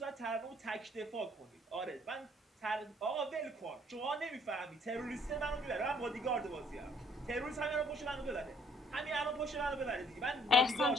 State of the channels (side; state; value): both; normal; correlation 0.62